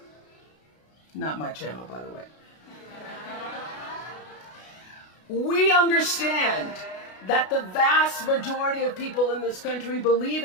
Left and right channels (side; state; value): right; late; 33 ms